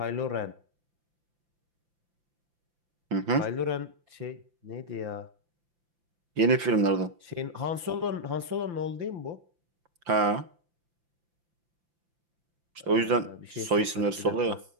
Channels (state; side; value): late; left; 5.8 ms